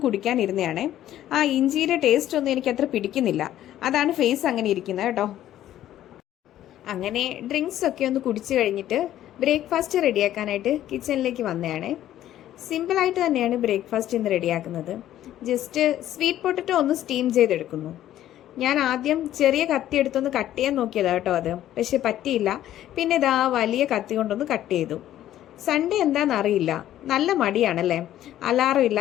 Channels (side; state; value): right; quieter; 12.6 dB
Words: കുടിക്കാനിരുന്നതാണേ. ആ ഇഞ്ചിയുടെ ടേസ്റ്റ് ഒന്നും എനിക്ക് അത്ര പിടിക്കുന്നില്ല. അതാണ് ഫേസ് അങ്ങനെ ഇരിക്കുന്നത് കേട്ടോ. അങ്ങനെ ഡ്രിങ്ക്സ് ഒക്കെ ഒന്ന് കുടിച്ചു കഴിഞ്ഞിട്ട് ബ്രേക്ക്ഫാസ്റ്റ് റെഡിയാക്കാനായിട്ട് കിച്ചണിലേക്ക് വന്നതാണ്. സിമ്പിളായിട്ട് തന്നെയാണ് ബ്രേക്ക്ഫാസ്റ്റ് ഇന്ന് റെഡിയാക്കുന്നത്. ജസ്റ്റ് സ്വീറ്റ് പൊട്ടറ്റോ ഒന്ന് സ്റ്റീം ചെയ്തെടുക്കുന്നു. ഞാൻ ആദ്യം ചെറിയ കത്തി എടുത്തൊന്ന് കട്ട് ചെയ്യാൻ നോക്കിയതാണ് കേട്ടോ അത്. പക്ഷെ പറ്റിയില്ല. പിന്നെ ഇതാ വലിയ കത്തി കൊണ്ടൊന്ന് കട്ട് ചെയ്തു. സൺഡേ എന്താണെന്ന് അറിയില്ല, നല്ല മടിയാണല്ലേ. അലാറം